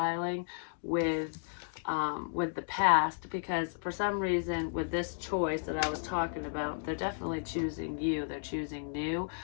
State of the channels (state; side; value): silent; right; digital silence